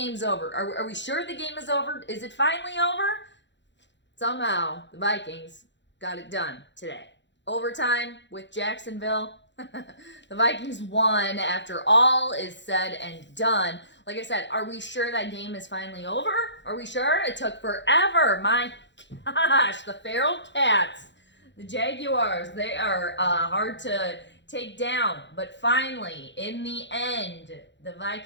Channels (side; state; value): right; late; 0.52 ms